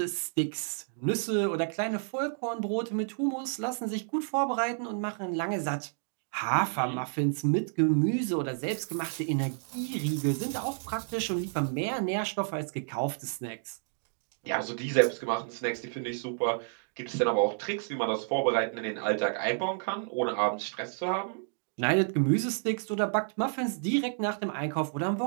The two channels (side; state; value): left; silent; digital silence